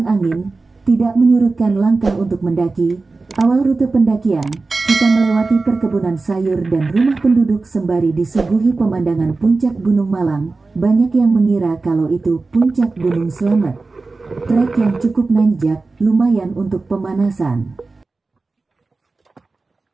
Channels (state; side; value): quieter; left; 3.7 dB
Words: angin, tidak menyurutkan langkah untuk mendaki. Awal rute pendakian, kita melewati perkebunan sayur dan rumah penduduk sembari disuguhi pemandangan puncak Gunung Malang. Banyak yang mengira kalau itu puncak Gunung Slamet. Trek yang cukup nanjak, lumayan untuk pemanasan.